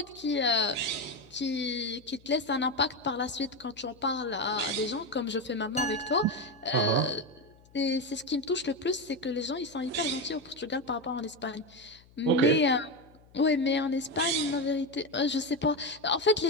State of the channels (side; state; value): left; noise; hum, 27 dB below the sound